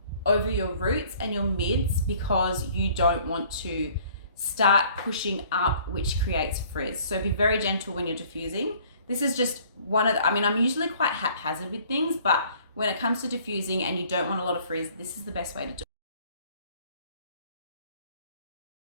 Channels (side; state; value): both; inverted; correlation -0.55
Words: over your roots and your mids because you don't want to start pushing up, which creates frizz. So be very gentle when you're diffusing. This is just one of the, I'm usually quite haphazard with things, but when it comes to diffusing and you don't want a lot of frizz, this is the best way to do it.